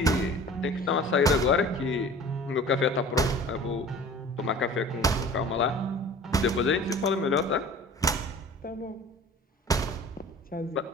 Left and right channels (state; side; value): normal; both; correlation 0.44